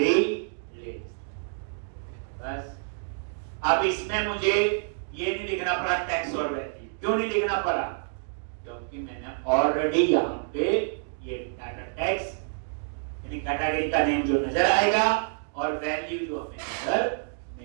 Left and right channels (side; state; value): left; silent; digital silence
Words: list. बस अब इसमें मुझे ये नहीं लिखना पड़ा टैक्स और वैल्यू, क्यों नहीं लिखना पड़ा, क्योंकि मैंने ऑलरेडी यहाँ पे ये डाटा टैक्स यानी कैटेगरी का नेम जो नजर आएगा और वैल्यू जो हमें नजर